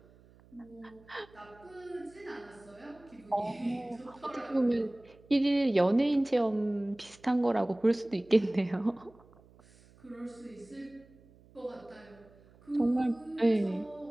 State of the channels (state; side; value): noise; right; hum, 26 dB below the sound